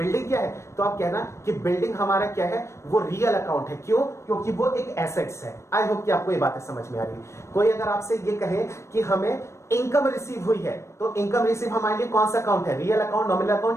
क्या है, तो आप कहना कि बिल्डिंग हमारा क्या है, वो रियल अकाउंट है। क्यों, क्योंकि वो एक एसेट्स है। आई होप कि आपको ये बातें समझ में आ रही है। कोई अगर आपसे ये कहे कि हमें इनकम रिसीव हुई है, तो इनकम रिसीव हमारे लिए कौन सा अकाउंट है, रियल अकाउंट, नॉमिनल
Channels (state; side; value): late; right; 0.13 ms